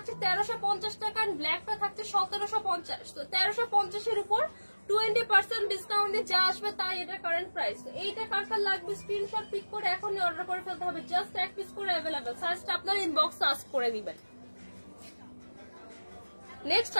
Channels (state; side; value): inverted; both; correlation -1.00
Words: 1350 টাকা, এন্ড ব্ল্যাকটা থাকছে 1750। তো 1350 এর উপর 20% ডিসকাউন্ট দিয়ে যা আসবে তাই এটা কারেন্ট প্রাইস। এইটা কার কার লাগবে স্ক্রিনশট পিক করে এখনই অর্ডার করে ফেলতে হবে। জাস্ট এক পিস করে অ্যাভেলেবেল, সাইজটা আপনার ইনবক্সে আস্ক করে দিবেন। নেক্সট